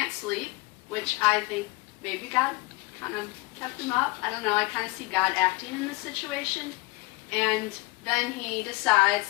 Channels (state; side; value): quieter; right; 23.3 dB